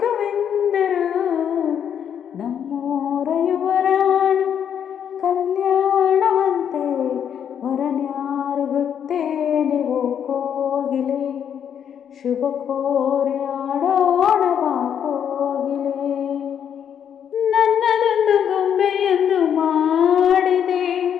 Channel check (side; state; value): right; quieter; 8.6 dB